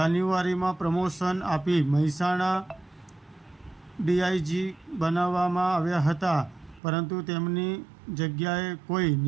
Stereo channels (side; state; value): left; drops out; at 6.8 s